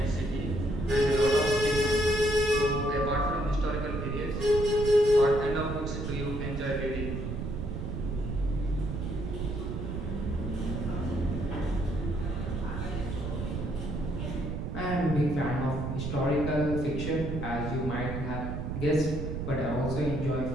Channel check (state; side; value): noise; right; rumble, 4 dB below the sound